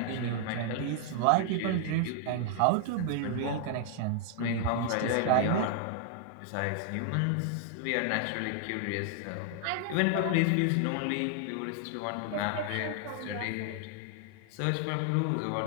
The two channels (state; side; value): different; both; correlation 0.00